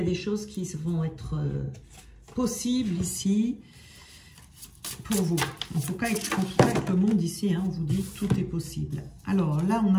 des choses qui vont être possibles ici pour vous. En tout cas, avec le monde ici, hein, on vous dit tout est possible. Alors là, on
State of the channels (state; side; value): identical; both; correlation 1.00